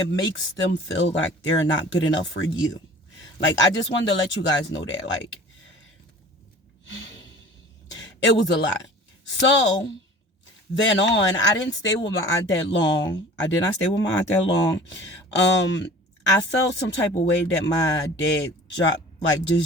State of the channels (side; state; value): both; normal; correlation 0.44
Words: makes them feel like they're not good enough for you. Like, I just wanted to let you guys know that. Like, it was a lot. So then on, I didn't stay with my aunt that long. I did not stay with my aunt that long. I felt some type of way that my dad